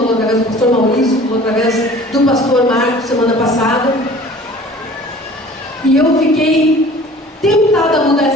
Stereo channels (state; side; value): normal; both; correlation 0.46